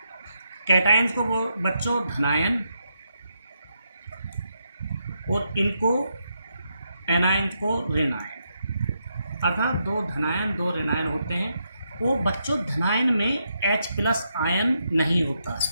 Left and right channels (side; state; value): both; inverted; correlation -0.81